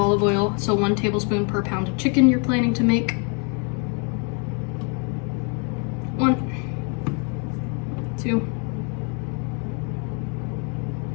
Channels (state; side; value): quieter; right; 36.8 dB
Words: oil, so 1 tablespoon per pound of chicken you're planning to make. 1, 2,